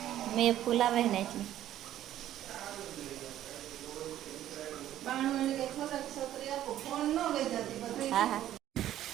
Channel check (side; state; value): left; quieter; 12.4 dB